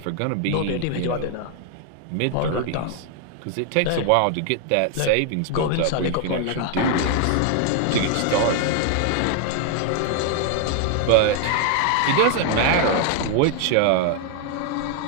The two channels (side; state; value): both; different; correlation 0.00